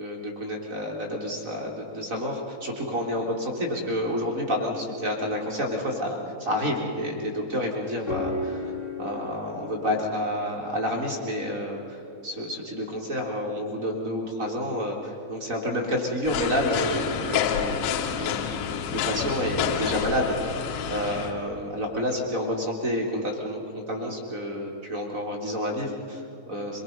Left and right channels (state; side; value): late; left; 3.9 ms